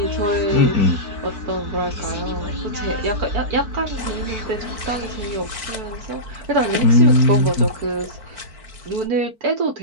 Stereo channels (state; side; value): late; left; 4.5 ms